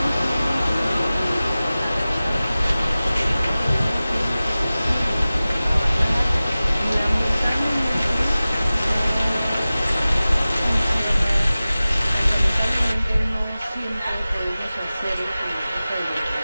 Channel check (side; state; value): both; inverted; correlation -0.97